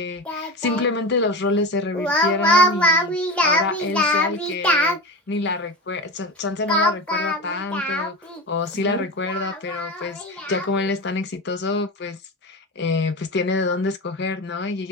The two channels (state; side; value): normal; both; correlation 0.26